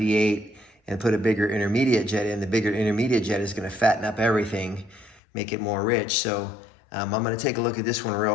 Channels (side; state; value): right; drops out; at 5.2 s